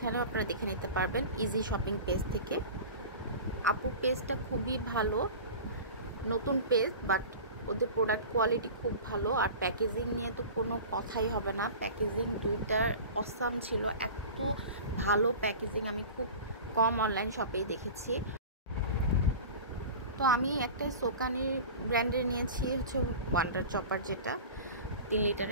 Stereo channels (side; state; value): both; inverted; correlation -0.35